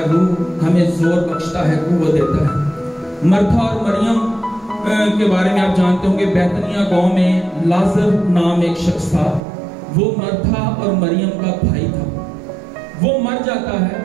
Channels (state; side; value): drops out; left; at 9.4 s